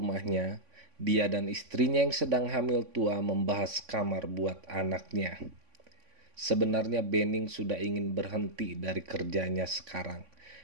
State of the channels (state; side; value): late; left; 3.5 ms